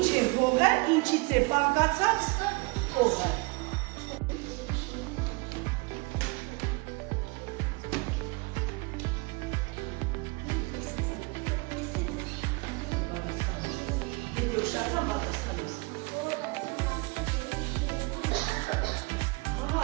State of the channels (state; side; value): quieter; left; 27.2 dB